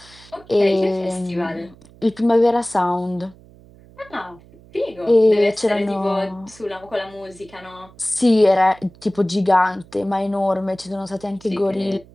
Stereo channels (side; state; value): right; noise; hum, 24 dB below the sound